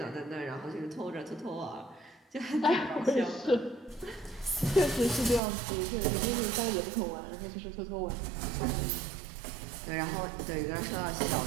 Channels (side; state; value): left; drops out; at 5.4 s